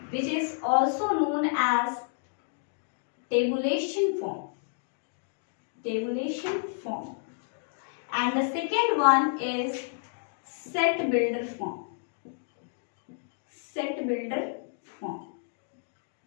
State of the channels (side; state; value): right; silent; digital silence